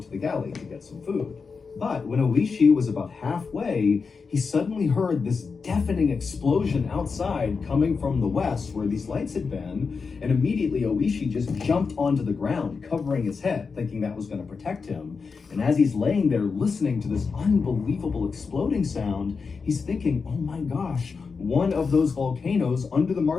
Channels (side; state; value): right; quieter; 5.0 dB